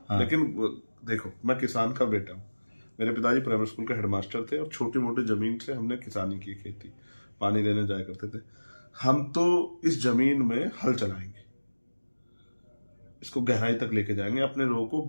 लेकिन देखो, मैं किसान का बेटा हूं। मेरे पिताजी प्राइमरी स्कूल के हेडमास्टर थे, और छोटी मोटी जमीन से हमने किसानी की, खेती पानी लेने जाया करते थे। हम तो इस जमीन में हल चलाएंगे, इसको गहराई तक लेके जाएंगे, अपने लोगों को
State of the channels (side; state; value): both; inverted; correlation -1.00